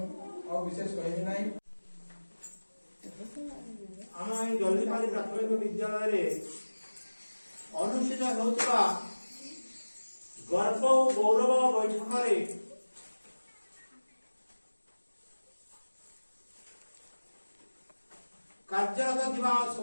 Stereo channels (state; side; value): inverted; both; correlation -1.00